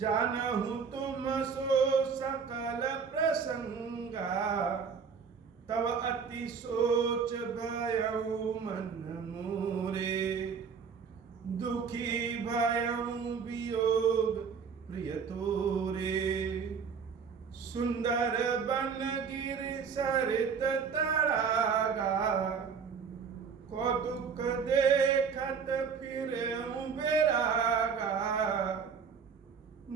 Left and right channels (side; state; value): left; quieter; 6.1 dB